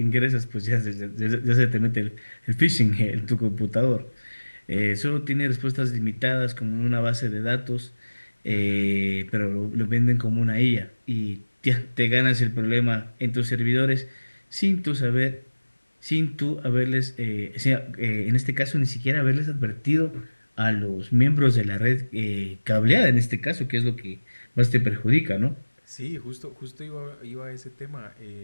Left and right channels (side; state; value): both; inverted; correlation -1.00